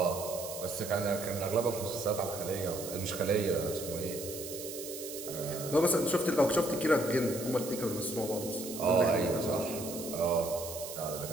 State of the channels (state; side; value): noise; right; hiss, 9 dB below the sound